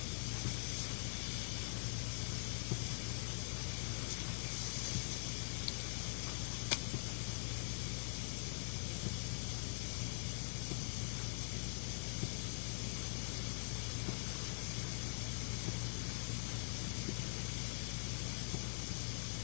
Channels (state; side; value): quieter; right; 35.1 dB